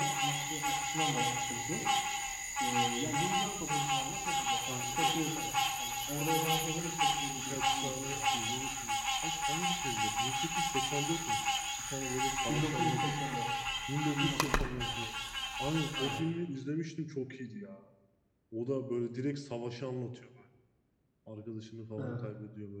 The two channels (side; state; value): both; identical; correlation 1.00